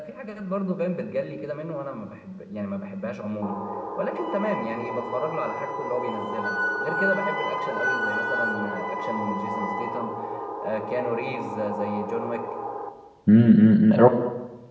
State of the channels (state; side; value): identical; both; correlation 1.00